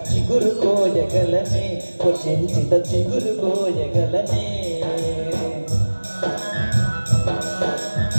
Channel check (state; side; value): inverted; both; correlation -1.00